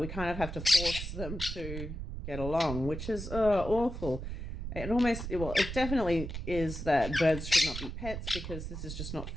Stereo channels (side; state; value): right; noise; rumble, 6 dB below the sound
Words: kind of have to force them to get along, which is awful. It definitely is that birds should not be pets, because this is just not